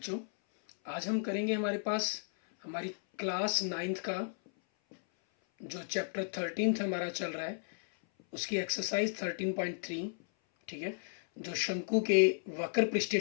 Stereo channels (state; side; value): silent; right; 55 dB below the other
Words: आज हम करेंगे हमारे पास हमारी क्लास 9th का जो चैप्टर 13 हमारा चल रहा है, उसकी एक्सरसाइज 13.3, ठीक है, जो शंकु के वक्र पृष्ठीय